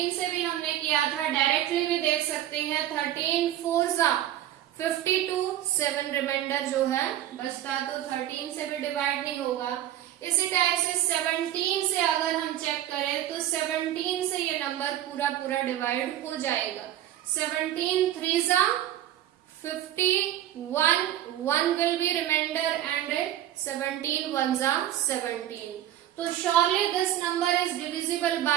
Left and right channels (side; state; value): left; quieter; 12.5 dB